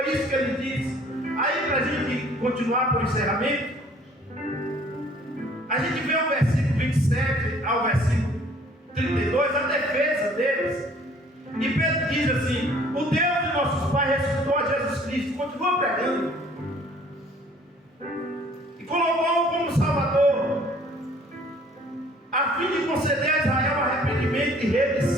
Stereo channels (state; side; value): normal; both; correlation 0.56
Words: isso que ele disse. Aí, para a gente continuar para o encerramento, a gente vê o versículo 27 ao versículo 32, a defesa deles. E Pedro diz assim: o Deus de nossos pais ressuscitou a Jesus Cristo, continua pregando, e colocou-o como Salvador, a fim de conceder a Israel arrependimento e